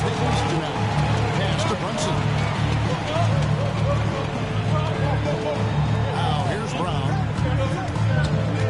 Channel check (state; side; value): identical; both; correlation 1.00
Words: the East now. Pass to Brunson. Now here's Brown.